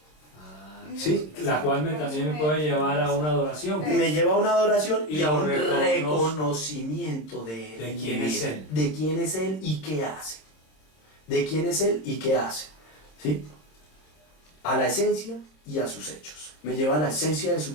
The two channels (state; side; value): late; right; 26 ms